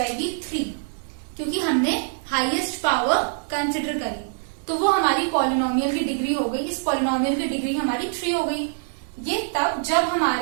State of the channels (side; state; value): left; silent; digital silence